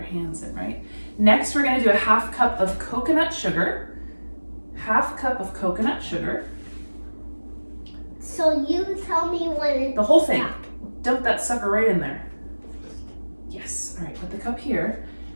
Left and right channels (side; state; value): both; inverted; correlation -1.00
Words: hands in, right? Next, we're gonna do a 1/2 cup of coconut sugar. 1/2 cup of coconut sugar. So you tell me when it's The whole thing. stopped. Dump that sucker right in there. Yes, all right, put the cup here.